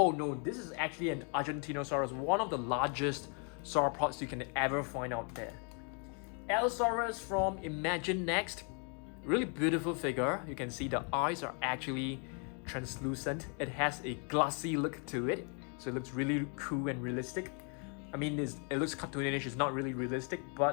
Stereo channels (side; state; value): right; quieter; 39.1 dB